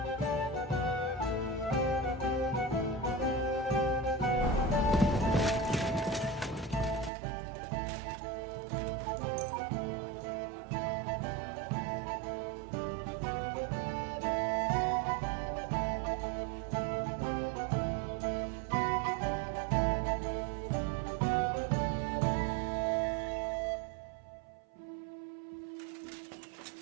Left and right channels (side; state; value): left; drops out; at 7.1 s